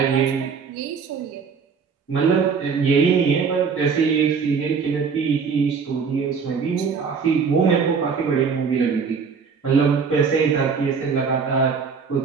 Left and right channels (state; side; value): quieter; left; 5.8 dB